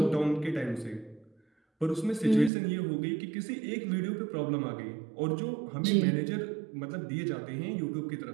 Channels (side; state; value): left; drops out; at 2.5 s